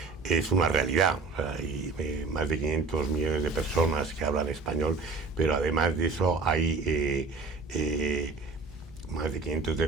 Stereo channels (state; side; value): quieter; left; 4.1 dB